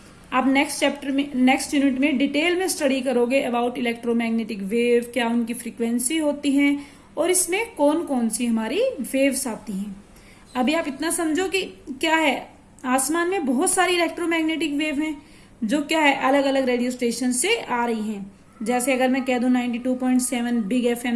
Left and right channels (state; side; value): identical; both; correlation 1.00